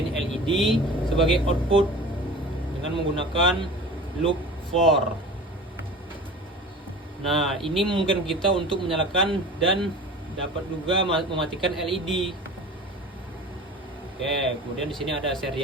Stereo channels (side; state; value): both; normal; correlation 0.38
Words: LED sebagai output dengan menggunakan loop for. Nah, ini memungkinkan kita untuk menyalakan dan dapat juga mematikan LED. Oke, kemudian di sini ada